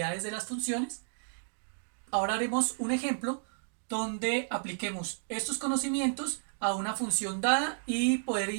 de las funciones. Ahora haremos un ejemplo donde apliquemos estos conocimientos a una función dada y poder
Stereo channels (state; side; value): silent; left; digital silence